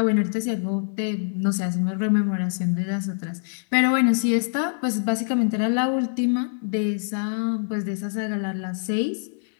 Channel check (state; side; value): silent; right; digital silence